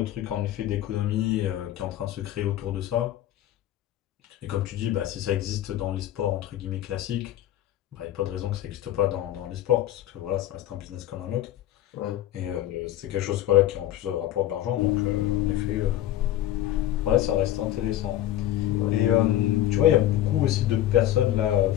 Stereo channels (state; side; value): quieter; right; 13.0 dB